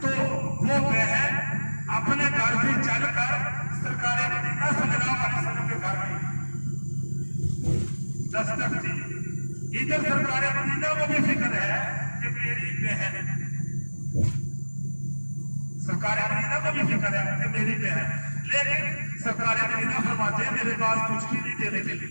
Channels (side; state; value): both; inverted; correlation -1.00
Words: तो वो बहन अपने घर से चलकर सरकारे मदीना सल्लल्लाहु अलैहि वसल्लम के घर गई, दस्तक दी। इधर सरकारे मदीना को भी फिक्र है कि मेरी बहन, सरकारे मदीना को भी फिक्र है कि मेरी बहन, लेकिन सरकारे मदीना फरमाते हैं मेरे पास कुछ भी नहीं देने के